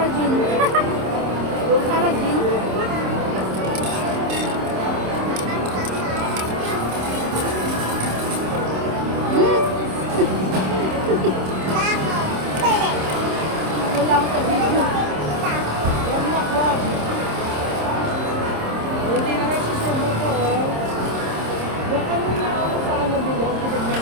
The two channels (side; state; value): left; late; 26 ms